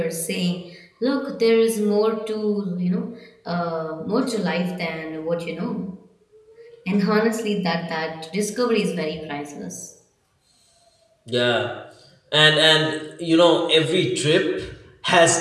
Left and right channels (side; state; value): both; identical; correlation 1.00